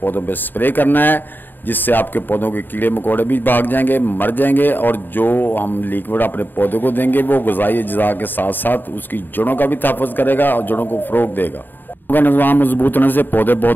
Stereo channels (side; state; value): right; late; 0.092 ms